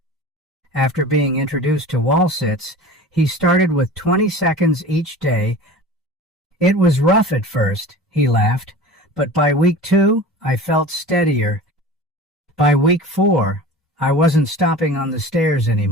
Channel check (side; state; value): both; normal; correlation 0.37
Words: After being introduced to wall sits, he started with 20 seconds each day. It was rough at first, he laughed, but by week 2, I felt steadier. By week 4, I wasn't stopping on the stairs